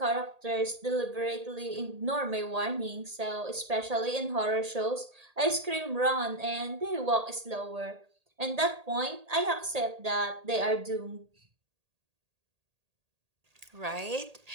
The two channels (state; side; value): late; left; 1.8 ms